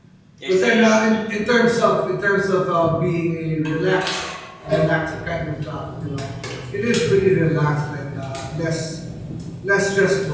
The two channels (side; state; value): both; identical; correlation 1.00